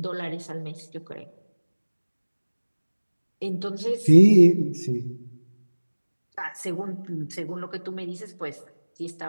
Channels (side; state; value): both; inverted; correlation -1.00